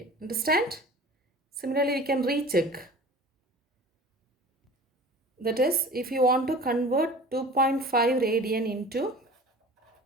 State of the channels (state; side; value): normal; both; correlation 0.42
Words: Understand? Similarly, we can recheck. That is, if you want to convert 2.5 radian